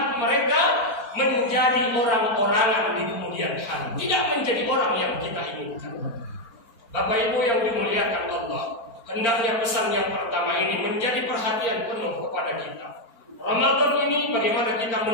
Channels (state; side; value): late; right; 4.4 ms